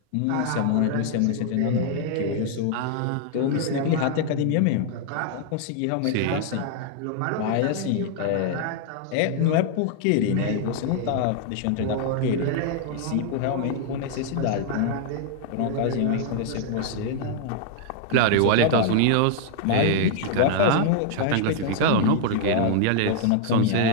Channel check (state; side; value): different; both; correlation 0.00